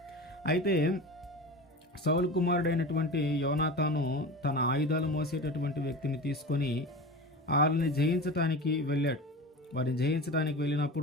అయితే సౌలు కుమారుడైనటువంటి యోనాతాను తన ఆయుధాలు మోసేటటువంటి వ్యక్తిని తీసుకొని వాళ్ళని జయించటానికి వెళ్ళాడు. వారిని జయించడానికి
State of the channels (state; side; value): normal; both; correlation 0.31